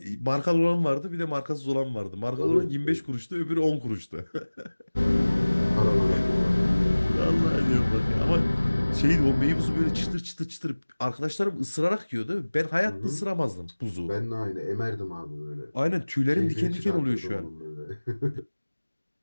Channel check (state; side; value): inverted; both; correlation -1.00